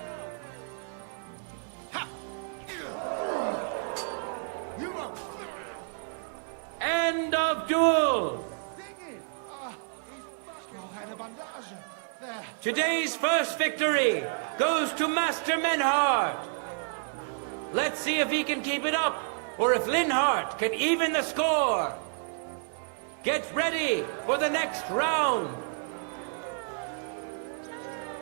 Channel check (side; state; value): left; silent; digital silence